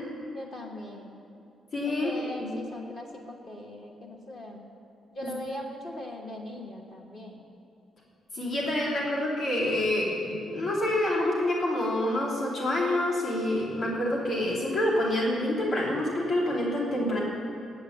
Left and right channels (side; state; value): both; normal; correlation 0.76